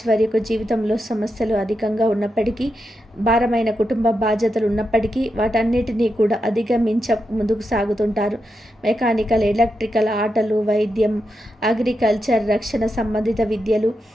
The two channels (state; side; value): normal; both; correlation 0.86